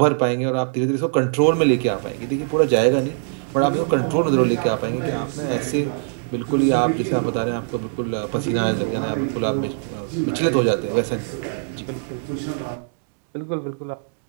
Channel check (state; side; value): silent; left; digital silence